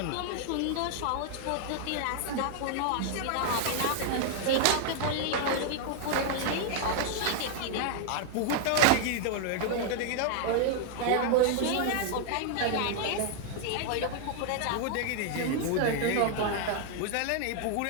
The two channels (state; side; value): different; both; correlation 0.00